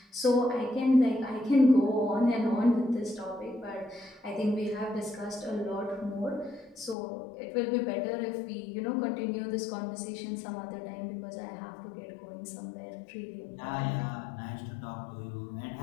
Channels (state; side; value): drops out; right; at 7.0 s